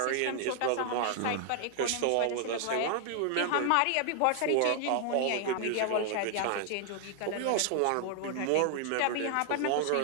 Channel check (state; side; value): different; both; correlation 0.00